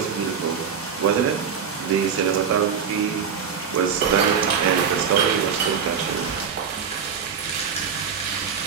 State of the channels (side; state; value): left; quieter; 6.9 dB